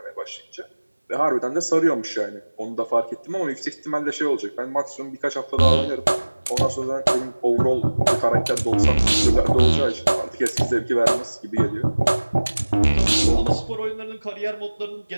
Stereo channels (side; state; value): both; inverted; correlation -1.00